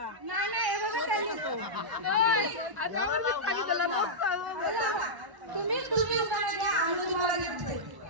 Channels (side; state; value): left; late; 1.0 ms